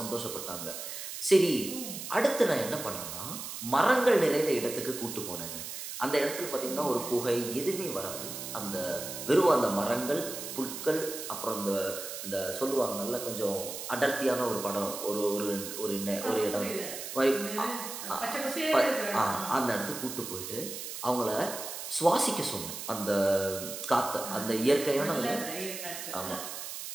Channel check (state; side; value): noise; right; hiss, 8 dB below the sound